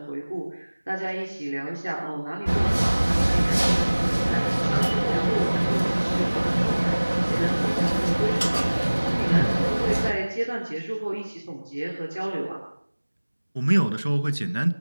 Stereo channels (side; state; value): both; inverted; correlation -1.00